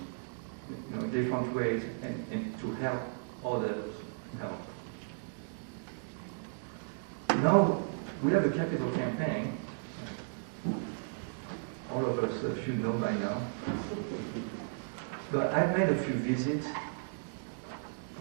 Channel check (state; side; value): silent; left; digital silence